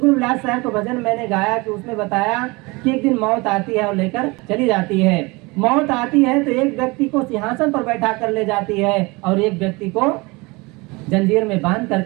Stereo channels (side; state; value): left; quieter; 25.1 dB